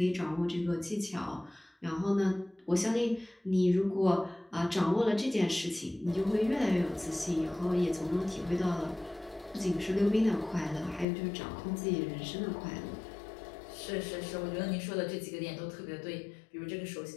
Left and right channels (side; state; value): right; drops out; at 11.1 s